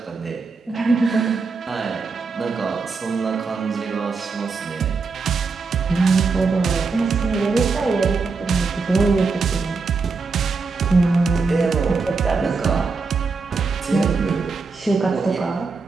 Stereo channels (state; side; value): quieter; left; 4.5 dB